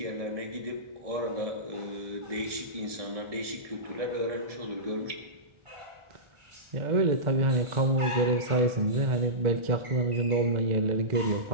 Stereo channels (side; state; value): left; late; 1.4 ms